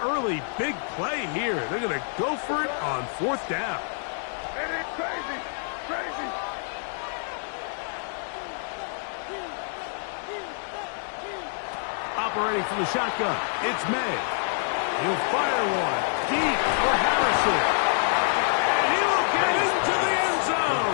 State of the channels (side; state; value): right; silent; digital silence